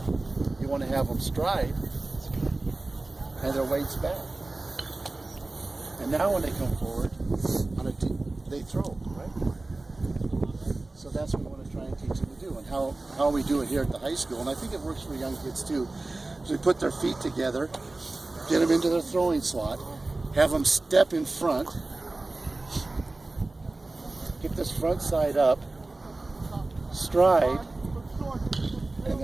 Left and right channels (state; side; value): quieter; left; 3.1 dB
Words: you want to have them stride and their weight's back. And now when they come forward, they throw, right? So that's what we want to try and teach them to do. And how we do it here at the high school, and I think it works for young kids too, is we put their feet together, get them into their throwing slot, have them step in front, get this front side up, stride, and